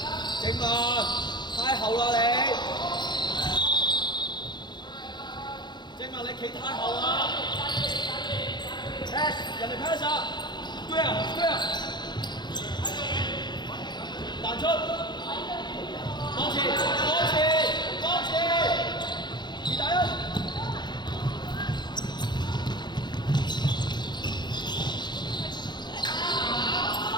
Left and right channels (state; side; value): late; right; 0.21 ms